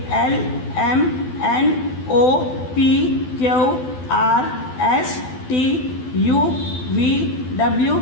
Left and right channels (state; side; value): late; right; 12 ms